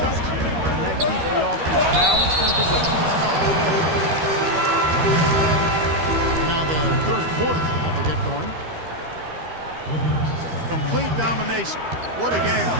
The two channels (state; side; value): late; left; 13 ms